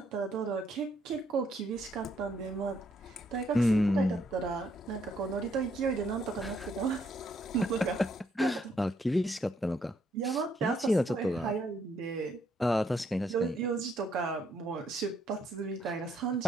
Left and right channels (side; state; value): both; normal; correlation 0.72